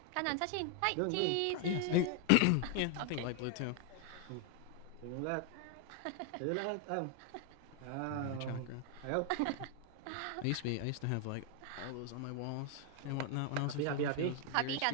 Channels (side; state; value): both; different; correlation 0.00